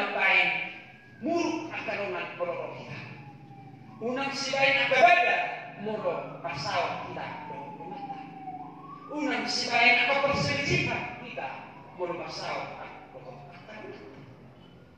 muruk ang karungan bolorong kita. Unang sibain ang babada, murok pasaw kita lumata. Unang sibain ang kaperselisipan kita, murok pasaw ang bolorong kita.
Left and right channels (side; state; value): both; identical; correlation 1.00